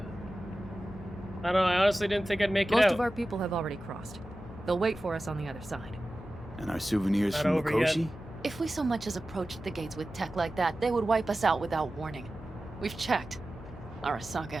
I don't know, I honestly didn't think I'd make it out. Most of our people have already crossed. They'll wait for us on the other side. And our souvenirs Not from over Mikoshi? yet. If we so much as approached the gates with tech like that, they would wipe us out without warning. We've checked. Arasaka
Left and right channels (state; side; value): noise; left; hum, 16 dB below the sound